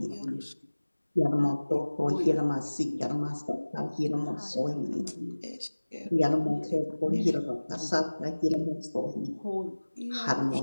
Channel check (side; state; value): both; inverted; correlation -1.00